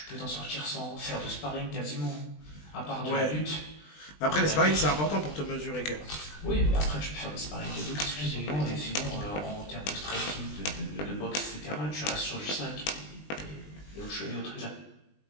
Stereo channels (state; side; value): late; right; 20 ms